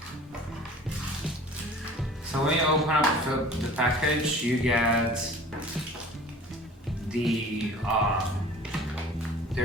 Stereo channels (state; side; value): normal; both; correlation 0.45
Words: So when you open up the package, you get the